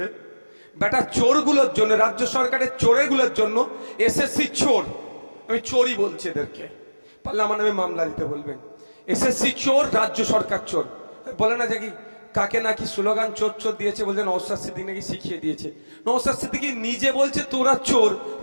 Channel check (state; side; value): inverted; both; correlation -1.00